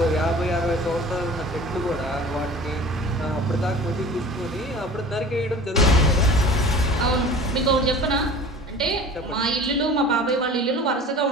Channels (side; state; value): both; normal; correlation 0.42